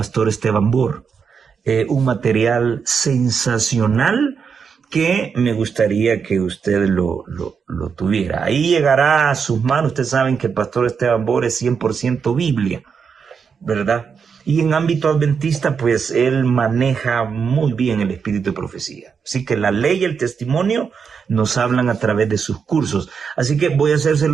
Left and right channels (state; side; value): quieter; left; 6.2 dB